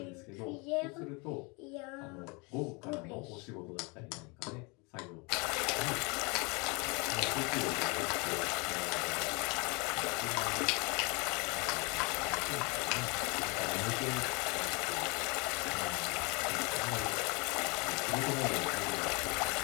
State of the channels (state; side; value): quieter; right; 29.5 dB